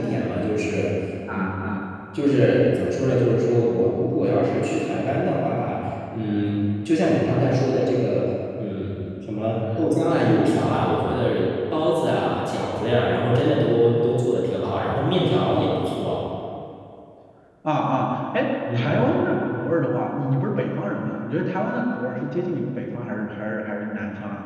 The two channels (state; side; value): identical; both; correlation 1.00